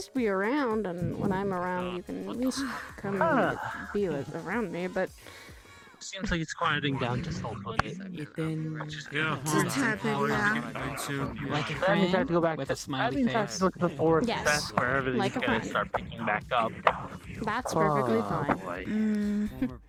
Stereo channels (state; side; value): identical; both; correlation 1.00